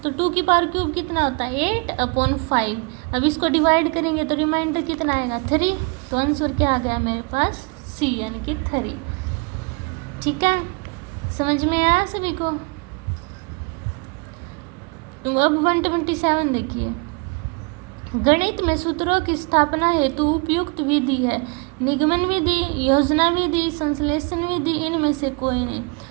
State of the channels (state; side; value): quieter; left; 31.6 dB